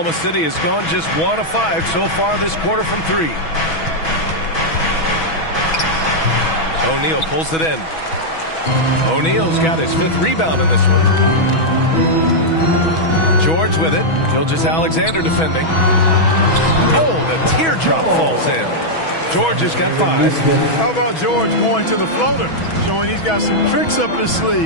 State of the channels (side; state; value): right; late; 6.2 ms